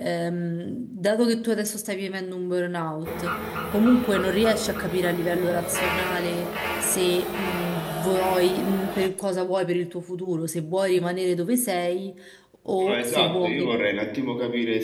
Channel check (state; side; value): identical; both; correlation 1.00